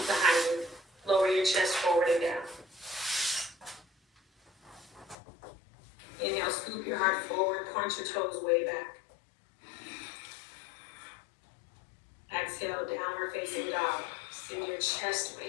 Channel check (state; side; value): drops out; right; at 5.2 s